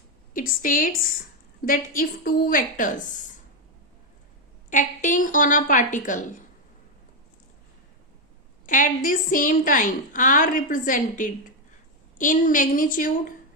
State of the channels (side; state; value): both; normal; correlation 0.04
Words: It states that if two vectors acting on a particle at the same time are represented in magnitude